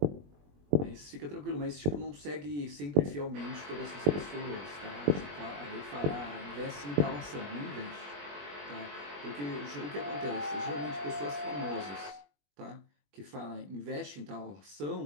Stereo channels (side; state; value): left; late; 21 ms